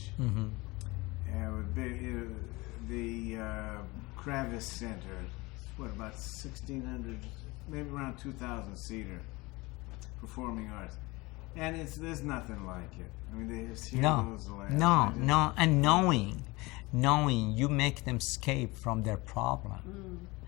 Mm-hmm. The Kravis Center, about 1,600, maybe around 2,000 seater, performing arts, and there's nothing like it. I mean, there's heroes. No, and knowing you make them escape from their problem,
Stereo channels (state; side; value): quieter; right; 23.1 dB